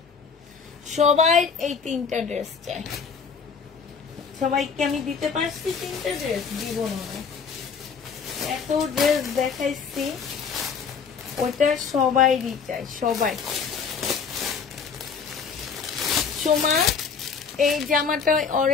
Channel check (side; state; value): right; quieter; 6.0 dB